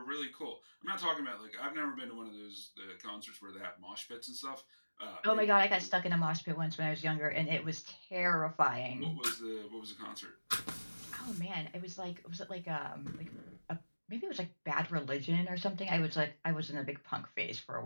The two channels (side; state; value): both; inverted; correlation -1.00